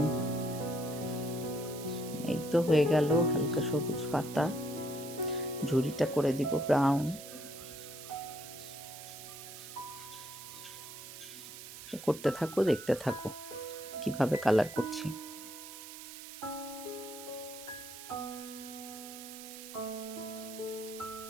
এই তো হয়ে গেল হালকা সবুজ পাতা। ঝুড়িটা করে দিব ব্রাউন। করতে থাকো, দেখতে থাকো কিভাবে কালার করছি।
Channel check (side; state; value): right; noise; hiss, 12 dB below the sound